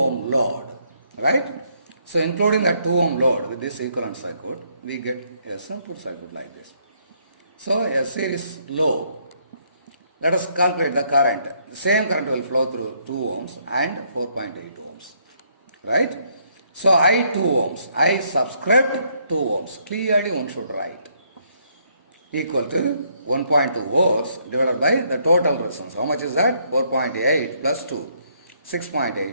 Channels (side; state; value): both; inverted; correlation -0.70